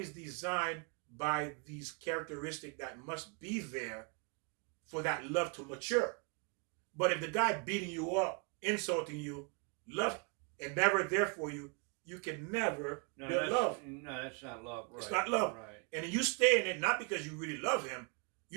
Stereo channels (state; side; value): quieter; left; 35.1 dB